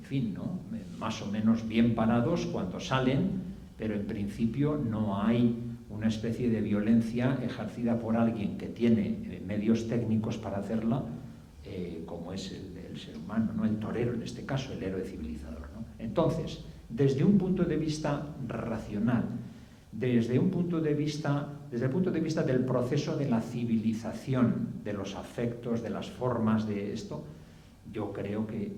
fin, ¿no?, más o menos bien parados cuando salen, pero en principio no hay una especie de violencia ejercida por alguien que tiene medios técnicos para hacerla, como es el ser humano, ¿no?, el torero en este caso, el héroe civilizador, ¿no? Entonces, desde un punto de vista racional, desde el punto de vista del proceso de la civilización, de los afectos, de las formas de esto, yo creo que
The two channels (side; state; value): both; identical; correlation 1.00